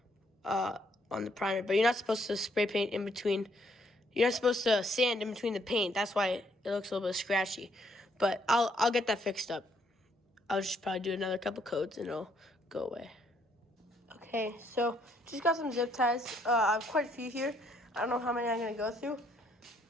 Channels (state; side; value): normal; both; correlation 0.69